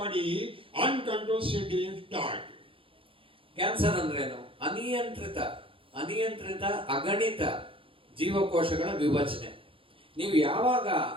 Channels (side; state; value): left; late; 0.26 ms